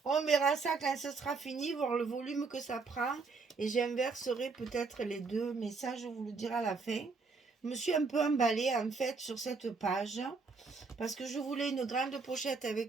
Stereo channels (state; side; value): quieter; left; 4.4 dB